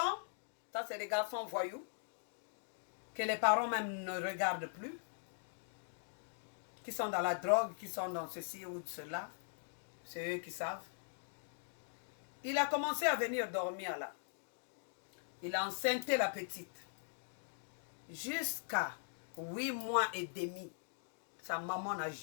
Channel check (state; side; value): silent; right; digital silence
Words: ça c'est les garçons voyous, que les parents même ne regardent plus, qui sont dans la drogue, qui sont dans ceci ou cela, c'est eux qui savent. Il a commencé à venir dormir là. Il a enceinté la petite. Jusqu'à 8 mois et demi. Sa maman n'a